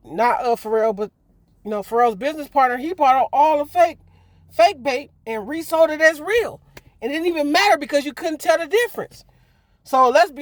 not Pharrell, but, Pharrell's business partner, he bought all the fake Bape and resold it as real. It didn't even matter because you couldn't tell the difference. So let's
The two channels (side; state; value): both; identical; correlation 1.00